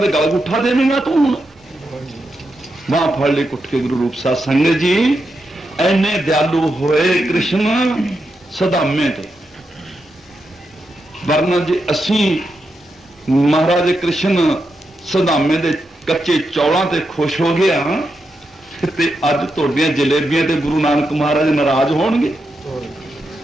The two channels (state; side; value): normal; both; correlation 0.86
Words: गल उठा देगा तू हुण। बांह फड़ ली कुट के गुरु रूप साध संगत जी। इन्ने दयालु होए कृष्ण सदामे ते, वरना जी असी महाराज कृष्ण सदामे दे कच्चे चौलों ते खुश हो गया ते अज तुहाडियां जलेबियां ते गुरु नानक महाराज नाराज होणगे,